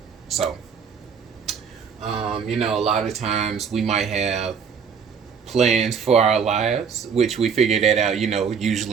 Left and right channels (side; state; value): left; quieter; 6.5 dB